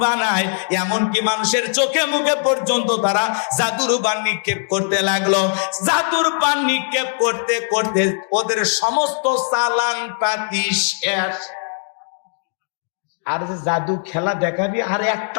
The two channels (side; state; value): right; silent; digital silence